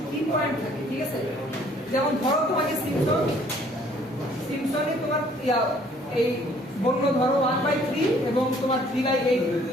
কি পয়েন্ট থাকে, ঠিক আছে, যেমন ধরো তোমাকে সিম্পসন সিম্পসনই তোমার এই বললো ধরো 1/3 এবং তোমার 3/8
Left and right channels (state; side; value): normal; both; correlation 0.59